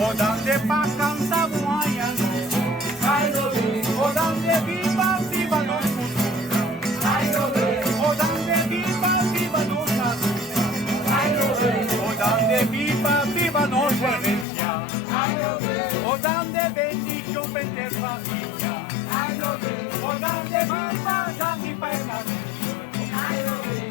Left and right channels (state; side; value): drops out; right; at 14.5 s